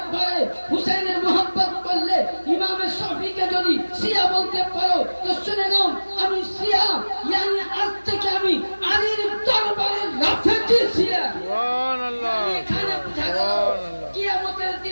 পারে, হুসাইনের মোহাব্বত করলে ইমামে শাফিঈকে যদি শিয়া বলতে পারো তো শুনে নাও আমি শিয়া, yani আজ থেকে আমি আলীর দরবারে রাফেজি শিয়া। সুবহানাল্লাহ এখানে বুঝা গেল কিয়ামতের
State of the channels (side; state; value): both; inverted; correlation -1.00